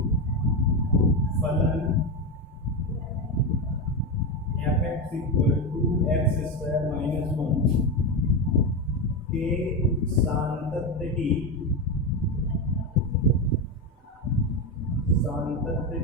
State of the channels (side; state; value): both; normal; correlation 0.14